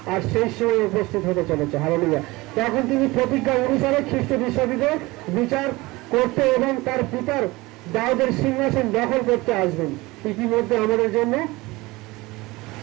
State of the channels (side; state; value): left; quieter; 21.6 dB